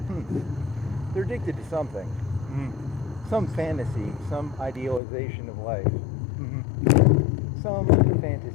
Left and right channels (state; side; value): drops out; right; at 5.0 s